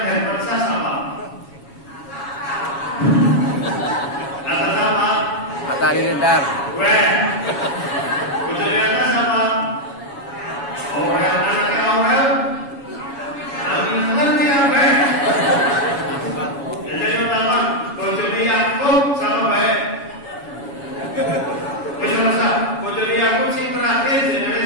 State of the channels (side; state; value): right; late; 7.1 ms